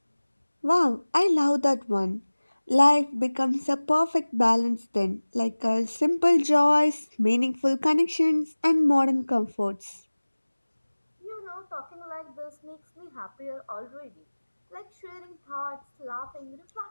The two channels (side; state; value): both; inverted; correlation -1.00